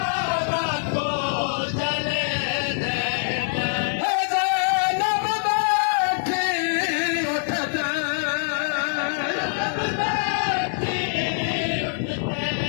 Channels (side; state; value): right; silent; 56 dB below the other